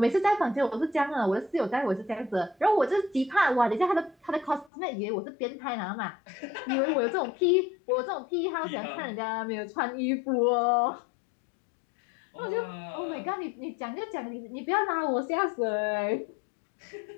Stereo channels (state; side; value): drops out; right; at 4.7 s